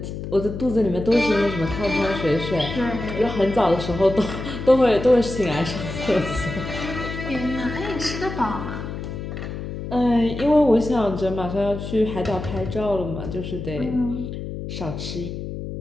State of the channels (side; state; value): left; noise; hum, 7 dB below the sound